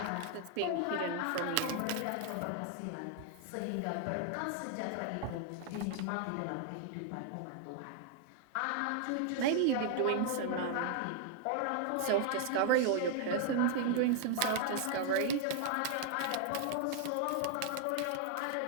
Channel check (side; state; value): both; different; correlation 0.00